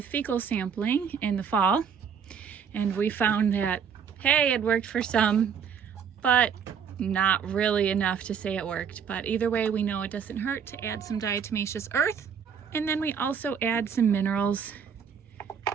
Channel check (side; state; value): left; quieter; 7.2 dB